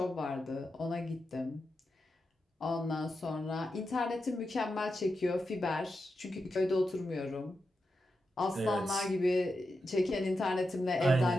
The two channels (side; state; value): both; normal; correlation 0.88